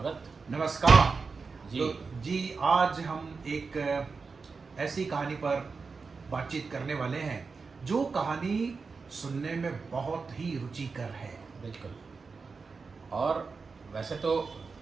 नमस्कार जी। तो जी आज हम एक ऐसी कहानी पर बातचीत करने वाले हैं जो कहानी सुनने में बहुत ही रुचिकर है। बिल्कुल। और वैसे तो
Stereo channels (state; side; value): quieter; left; 4.7 dB